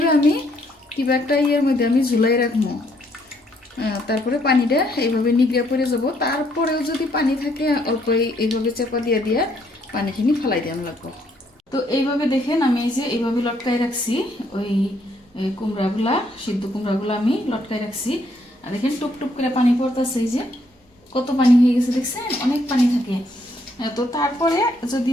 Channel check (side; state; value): both; normal; correlation 0.70